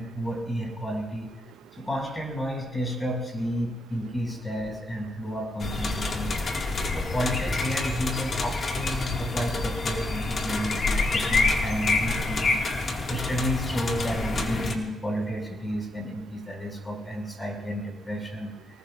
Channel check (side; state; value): both; normal; correlation 0.81